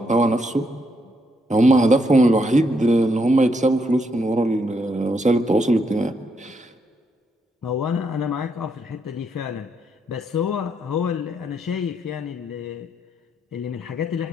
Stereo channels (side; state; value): both; normal; correlation 0.77